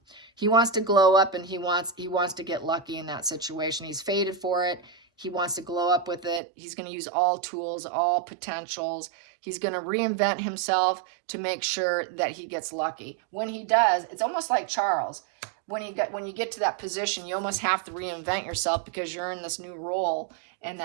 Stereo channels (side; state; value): left; drops out; at 6.4 s